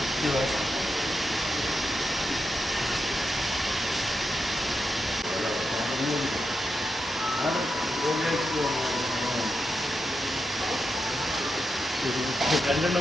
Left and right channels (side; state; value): both; normal; correlation 0.86